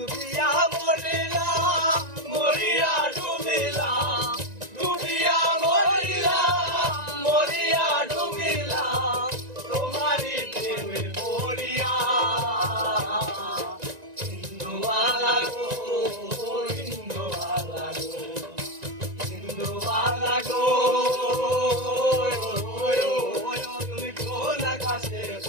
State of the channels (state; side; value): late; left; 1.9 ms